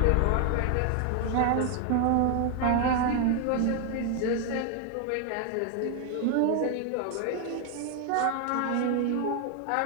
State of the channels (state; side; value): different; both; correlation 0.00